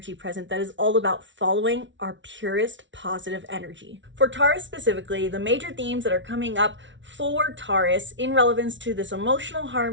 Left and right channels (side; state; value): left; late; 0.55 ms